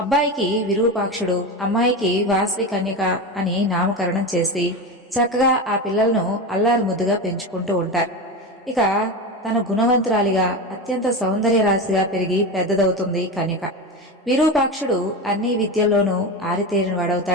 అబ్బాయికి విరూపాక్షుడు, అమ్మాయికి వాసవి కన్యక అని నామకరణం చేసి చక్కగా ఆ పిల్లలను అల్లారు ముద్దుగా పెంచుకుంటూ ఉంటారు. ఇక తన గుణవంతురాలిగా అత్యంత సౌందర్య రాశిగా పెరిగి పెద్దదవుతుంది కన్యక. విరూపాక్షుడు అన్ని విద్యల్లోనూ ఆరితేరిన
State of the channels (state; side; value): normal; both; correlation 0.21